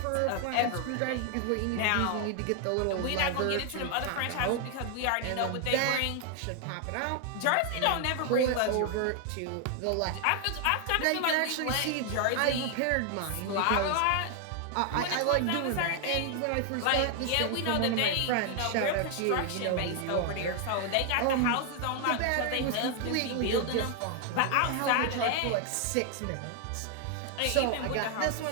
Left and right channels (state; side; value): different; both; correlation 0.00